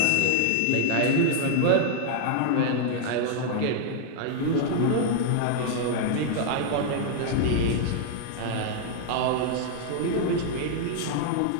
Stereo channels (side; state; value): both; different; correlation 0.00